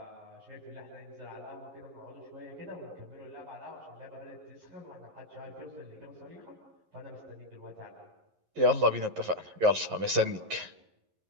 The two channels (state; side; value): late; left; 11 ms